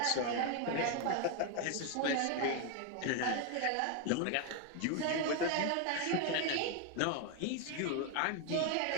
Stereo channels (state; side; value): different; both; correlation 0.01